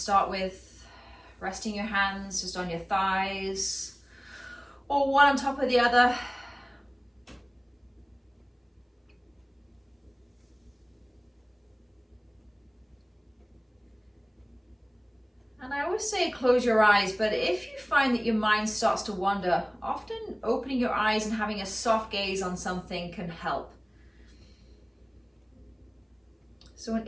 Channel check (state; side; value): identical; both; correlation 1.00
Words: with. Resting your hands just on your thighs or one on top of the other. And I always say close your eyes, but if you find that your mind starts to wander, often opening your eyes and having a soft gaze on something can help. So an